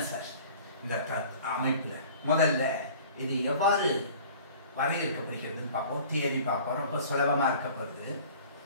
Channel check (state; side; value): inverted; both; correlation -0.46